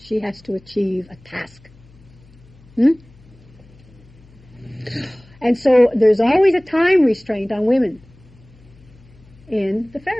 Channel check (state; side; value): noise; left; hum, 26 dB below the sound